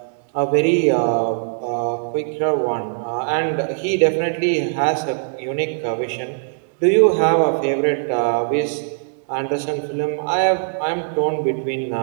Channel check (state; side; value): silent; left; digital silence